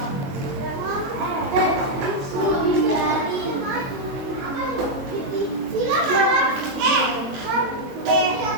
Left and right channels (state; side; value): late; left; 22 ms